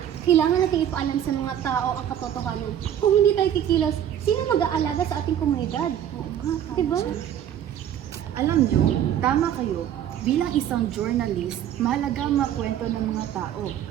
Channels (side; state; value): left; quieter; 10.3 dB